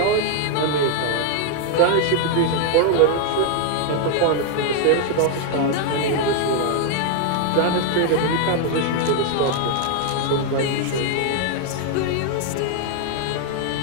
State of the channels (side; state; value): both; different; correlation 0.00